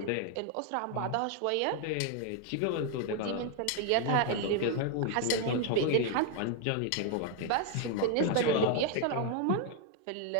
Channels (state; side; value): different; both; correlation 0.01